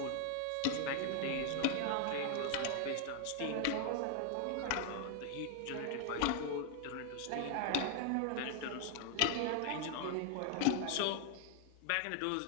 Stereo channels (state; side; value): different; both; correlation 0.00